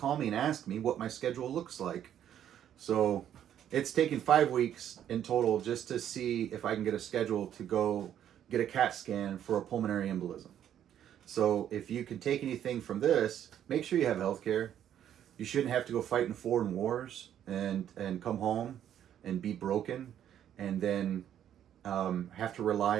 me and ask me what my schedule looks like. So it's taken 5 weeks in total just to see if I can get a schedule to go get a CAT scan for a pulmonary embolism. So if you can take anything from this, make sure you have health care. You shouldn't have to go fight in foreign wars and come home and be broken and then have to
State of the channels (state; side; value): quieter; left; 10.3 dB